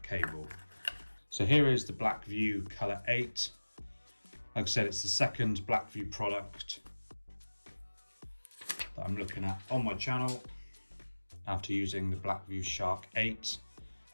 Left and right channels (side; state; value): both; inverted; correlation -1.00